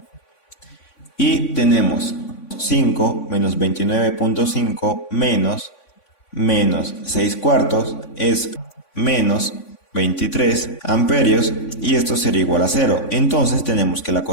y tenemos 5 menos 29,5 menos 6 cuartos es menos 23 amperios, y esto sería igual a 0. Entonces tenemos que la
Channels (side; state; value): right; late; 3.5 ms